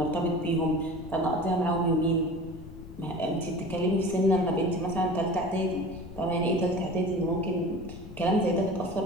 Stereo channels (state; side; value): noise; left; rumble, 15 dB below the sound